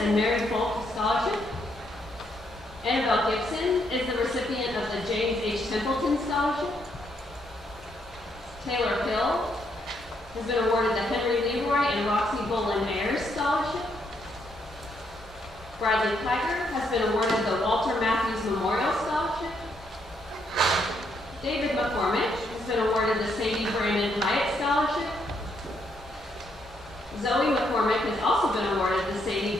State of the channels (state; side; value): normal; both; correlation 0.75